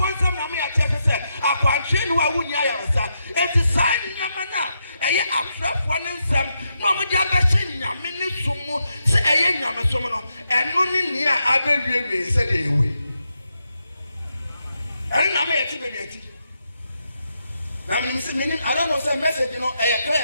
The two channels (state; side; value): inverted; both; correlation -0.83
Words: some, I may say, I can't train who I wouldn't yayasa. It's a sign in Yamana, a year after one in some, Mamma Jabashin, Yamini Sumu, say a young Yamasomono, and only near Abbey said away. And I may achieve it. Now, I don't know some message, you know, I